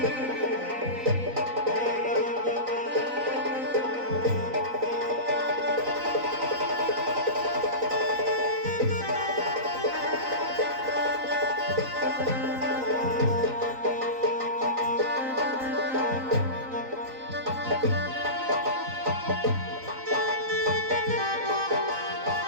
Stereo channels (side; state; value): left; late; 3.9 ms